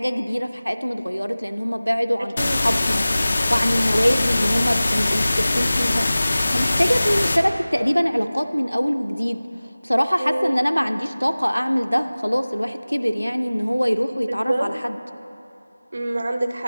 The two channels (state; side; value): inverted; both; correlation -0.98